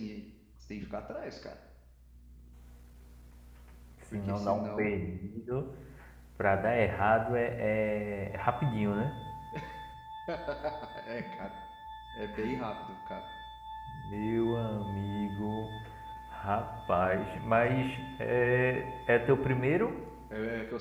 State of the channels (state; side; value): identical; both; correlation 1.00